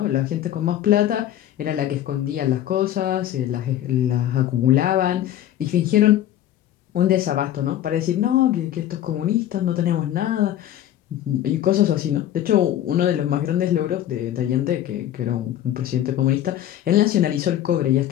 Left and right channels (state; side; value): quieter; right; 12.0 dB